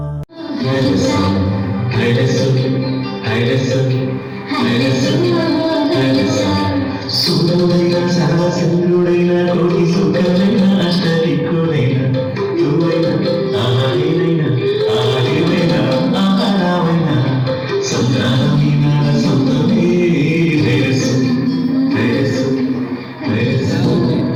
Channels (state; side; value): identical; both; correlation 1.00